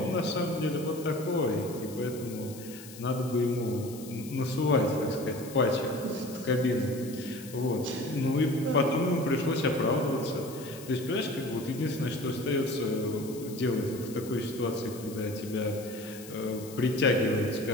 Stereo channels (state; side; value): noise; left; hiss, 16 dB below the sound